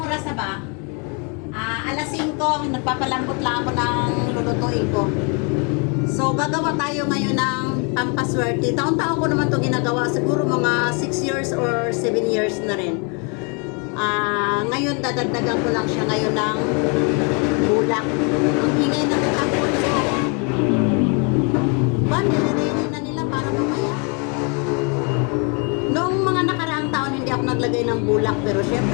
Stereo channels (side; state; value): right; quieter; 34.7 dB